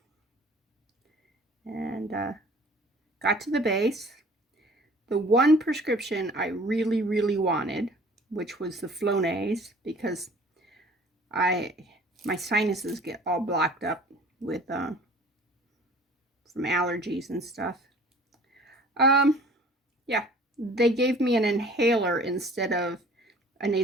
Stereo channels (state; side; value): normal; both; correlation 0.49